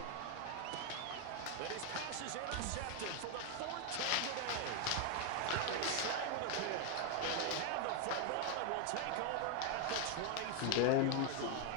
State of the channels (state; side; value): different; both; correlation 0.01